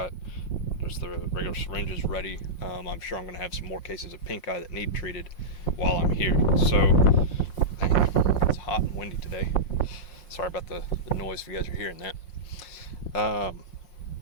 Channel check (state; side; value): late; right; 5.6 ms